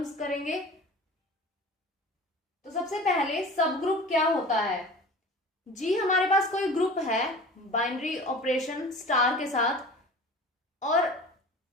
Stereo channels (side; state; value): both; normal; correlation 0.39